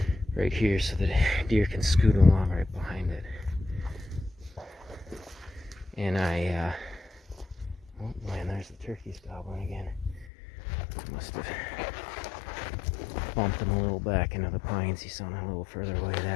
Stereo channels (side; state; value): right; drops out; at 10.3 s